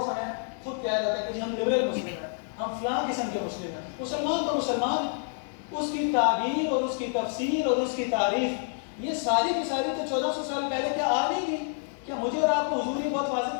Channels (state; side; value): silent; right; 57 dB below the other